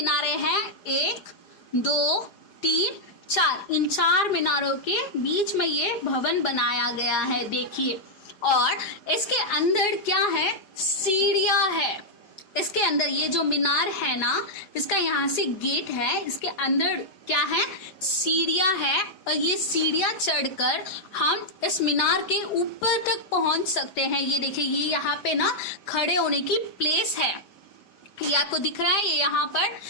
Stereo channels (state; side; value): late; right; 4.9 ms